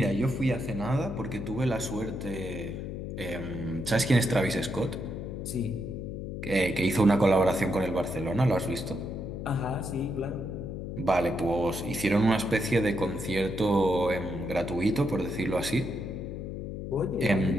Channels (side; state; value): left; noise; hum, 6 dB below the sound